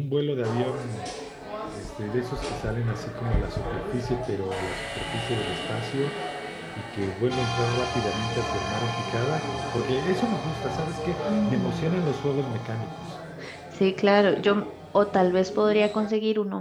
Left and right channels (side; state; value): both; identical; correlation 1.00